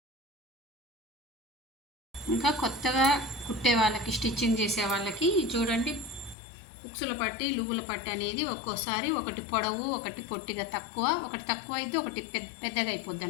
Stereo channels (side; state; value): right; drops out; at 6.4 s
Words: ఇంకా కొత్తగా కుట్టే వాళ్ళకి, స్టిచ్చింగ్ చేసే వాళ్ళకి చూడండి, ఉక్సుల పట్టి లుగుల పట్టి అనేది ఒక్కోసారి ఒకటి పొడవు ఒకటి పొట్టిగా తక్కువ, ఒకటి తక్కువ అయితే ఒకటి పెద్దగా అయిపోద్ది